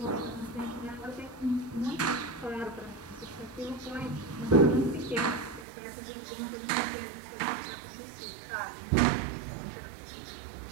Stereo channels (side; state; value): left; drops out; at 5.7 s